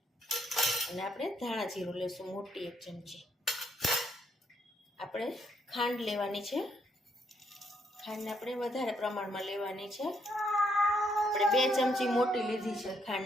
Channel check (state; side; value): normal; both; correlation 0.74